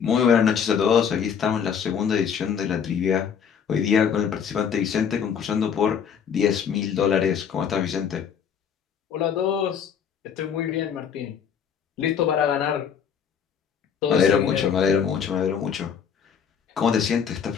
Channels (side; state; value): right; quieter; 7.5 dB